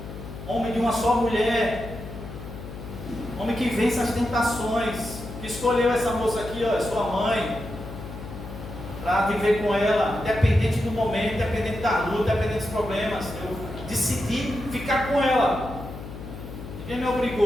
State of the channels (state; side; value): noise; left; hum, 11 dB below the sound